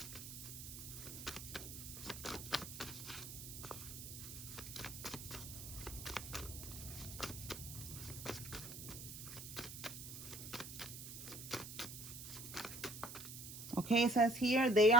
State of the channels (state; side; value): noise; right; hiss, 10 dB below the sound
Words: Okay, it says here they